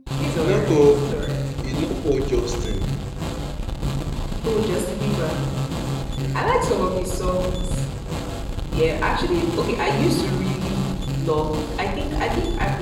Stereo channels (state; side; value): identical; both; correlation 1.00